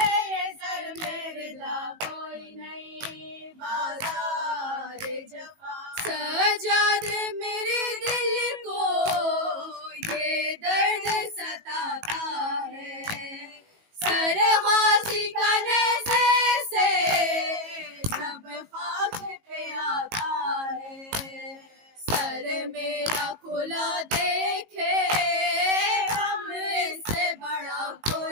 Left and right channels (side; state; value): left; late; 18 ms